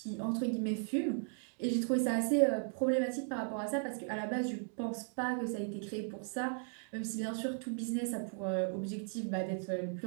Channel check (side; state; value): left; silent; 53 dB below the other